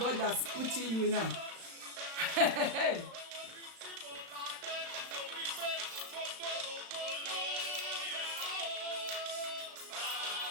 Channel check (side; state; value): left; late; 35 ms